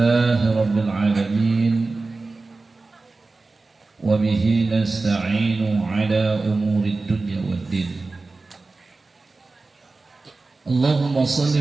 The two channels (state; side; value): quieter; left; 3.6 dB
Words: rabbil alamin wa bihi nasta'inu ala umurid dunya waddin. Allahumma